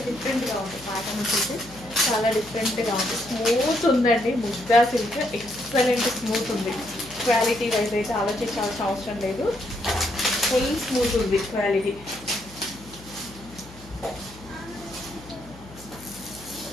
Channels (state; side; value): noise; left; hum, 20 dB below the sound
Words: డిఫరెంట్గా ఉంది ప్యాటర్న్ వచ్చేసి, చాలా డిఫరెంట్గా ఉంది. స్మూత్ ఉందండి. ముగ్గా సిల్క్ ఎక్సలెంట్ స్మూత్ ఉంది. క్వాలిటీ వైజ్ అయితే ఆలోచించాల్సిన అవసరం లేదు. ఫుల్ స్మూత్ ఉంది క్వాలిటీ.